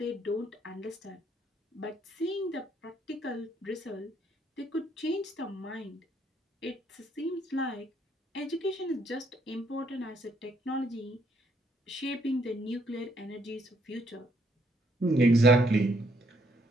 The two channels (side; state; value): both; normal; correlation 0.70